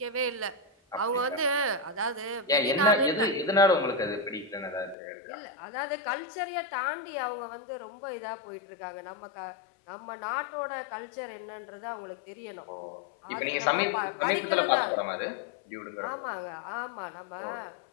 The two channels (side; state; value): right; drops out; at 5.0 s